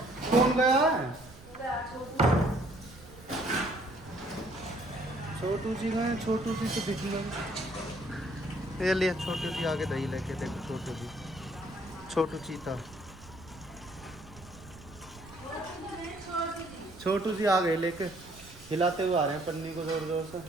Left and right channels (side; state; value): right; noise; rumble, 20 dB below the sound